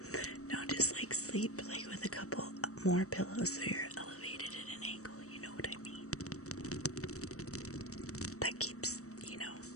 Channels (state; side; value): late; right; 0.65 ms